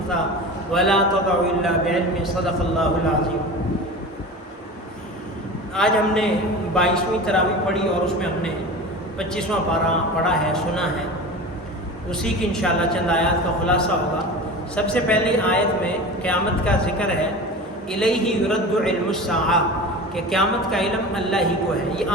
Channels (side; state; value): both; normal; correlation 0.33